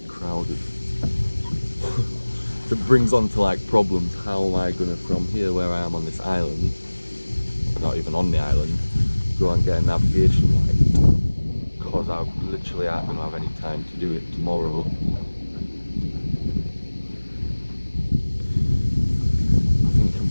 crowded. So it brings on to like problems. How am I going to, from here where I am on this island, not even on the island, go and get a navigation light? Because I literally aren't going to have any time to do it tomorrow. I think you can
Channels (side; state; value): both; inverted; correlation -1.00